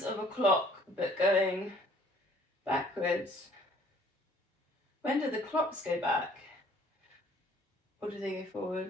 of a clock, but going backwards. When do the clocks go back? Or do they go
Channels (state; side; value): normal; both; correlation 0.57